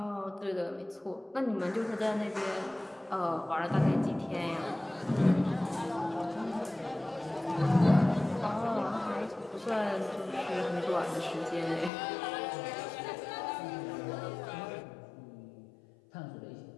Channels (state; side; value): drops out; right; at 11.9 s